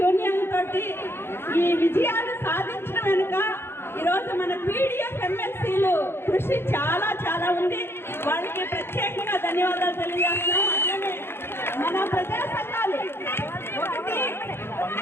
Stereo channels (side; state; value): right; late; 0.11 ms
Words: తోటి ఈ విజయాలు సాధించిన వెనుక ఈరోజు మన పీడిఎఫ్ ఎమ్మెల్సీలు కృషి చాలా చాలా ఉంది. వాళ్ళకి ప్రత్యేకంగా ధన్యవాదాలు తెలియజేస్తున్నాం. అట్లనే మన ప్రజా సంఘాలు, ఒకటి